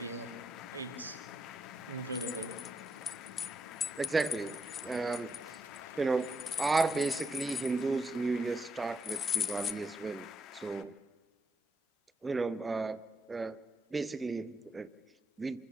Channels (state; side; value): normal; both; correlation 0.80